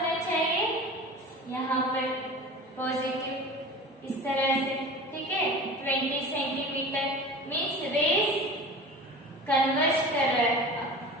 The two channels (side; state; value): both; normal; correlation 0.36